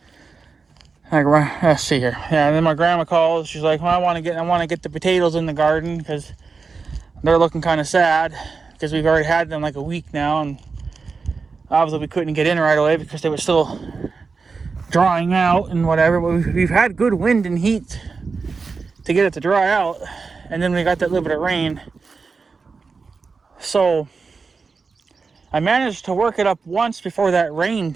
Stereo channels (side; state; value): left; quieter; 4.7 dB